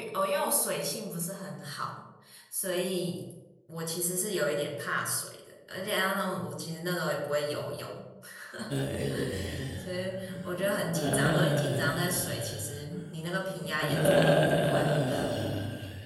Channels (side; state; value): both; identical; correlation 1.00